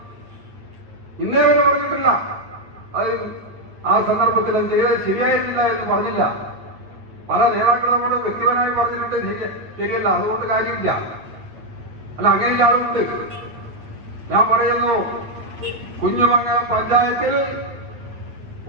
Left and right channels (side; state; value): left; late; 8.9 ms